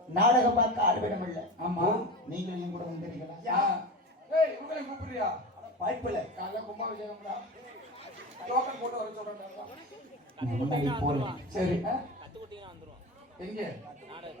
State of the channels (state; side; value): normal; both; correlation 0.27